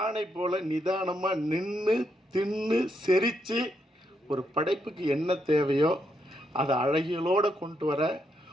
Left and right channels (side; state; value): both; normal; correlation 0.79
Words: போல் நிதானமாக நின்று தின்னு செரித்து ஒரு படைப்புக்கு என்ன தேவையோ அதை அழகியலோடு கொண்டு வர